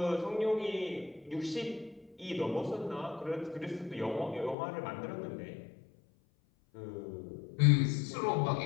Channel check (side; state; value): right; drops out; at 4.5 s